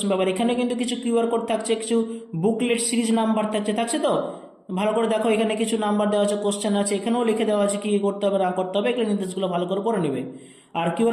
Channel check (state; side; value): identical; both; correlation 1.00